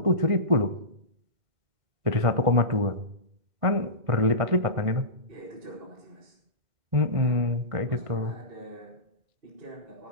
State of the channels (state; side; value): late; left; 1.6 ms